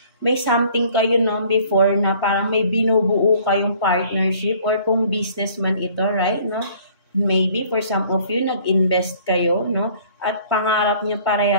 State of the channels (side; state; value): both; inverted; correlation -0.55